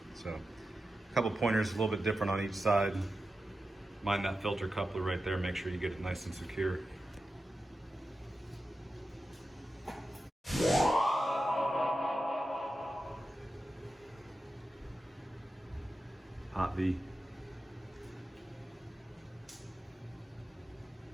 So a couple pointers, a little bit different on each side. Mind that filter coupler right there, make sure you get it nice and secure. Hot V.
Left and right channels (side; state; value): both; normal; correlation 0.92